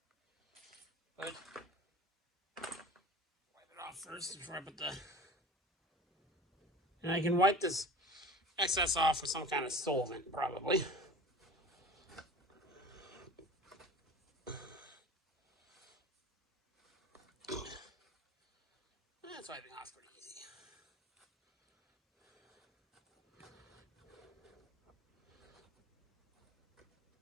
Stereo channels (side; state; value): both; normal; correlation 0.39